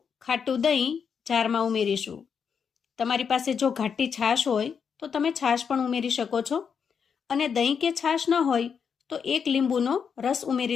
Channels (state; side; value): quieter; right; 6.7 dB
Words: ખાટું દહીં જારમાં ઉમેરીશું. તમારી પાસે જો ઘાટી છાશ હોય તો તમે છાશ પણ ઉમેરી શકો છો, અને દહીં કે છાશ ન હોય તો એક લીંબુનો રસ